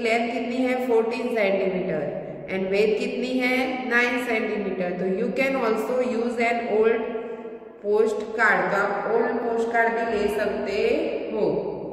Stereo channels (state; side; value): identical; both; correlation 1.00